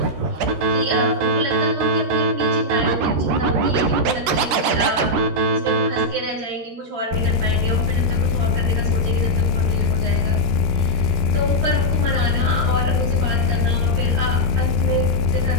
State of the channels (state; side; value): late; left; 13 ms